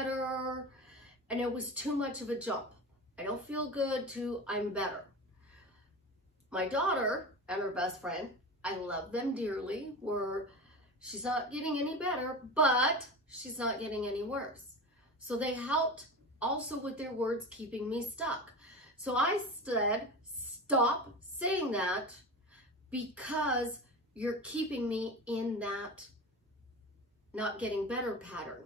and it was too much of a jump. I don't feel good to I'm better. My daughter and her best friend, I love them dearly, she's not getting any better, but she's not getting any worse. So they helped also with their words keeping me stuck. So I said, stop saying that because you're keeping me in that not getting better pattern.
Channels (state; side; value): normal; both; correlation 0.28